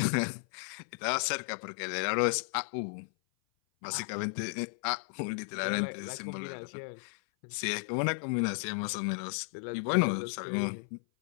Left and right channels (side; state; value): right; silent; 55 dB below the other